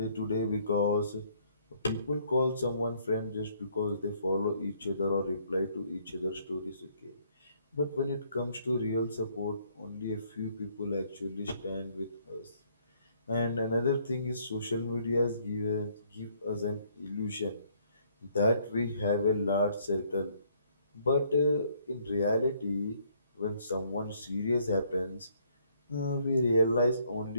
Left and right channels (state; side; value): inverted; both; correlation -0.66